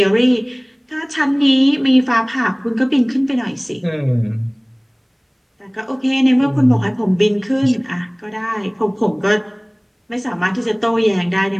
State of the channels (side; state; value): both; identical; correlation 1.00